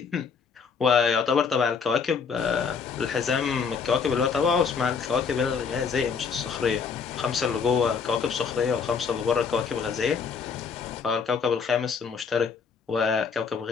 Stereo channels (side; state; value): right; quieter; 5.8 dB